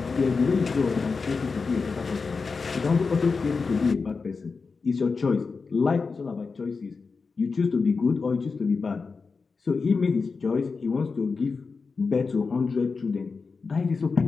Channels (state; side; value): quieter; right; 4.6 dB